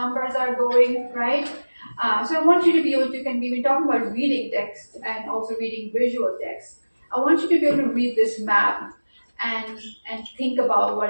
are going, right? So I want you to be able to, we've been talking about reading text and also reading visual text. I want you to be able to read this map and think about what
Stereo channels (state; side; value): inverted; both; correlation -1.00